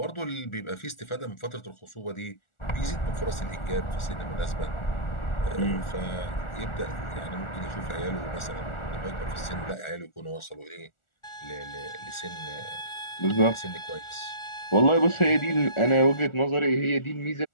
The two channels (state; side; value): late; right; 1.4 ms